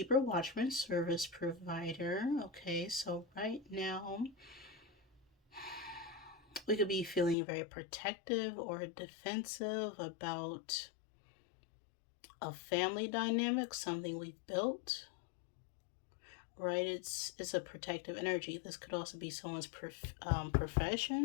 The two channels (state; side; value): drops out; right; at 7.4 s